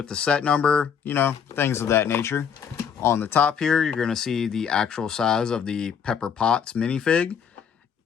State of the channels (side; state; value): right; quieter; 7.4 dB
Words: the set number, things of that nature. On the top here, you're going to see the actual size of the Pepper Potts minifig.